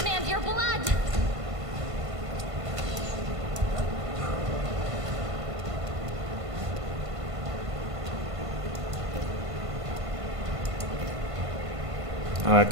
your blood. I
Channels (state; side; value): late; left; 1.5 ms